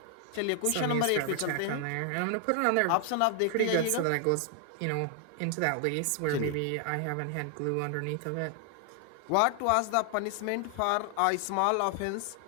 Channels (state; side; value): different; both; correlation 0.00